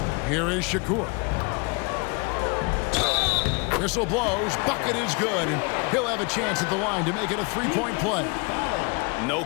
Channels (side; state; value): right; quieter; 30.4 dB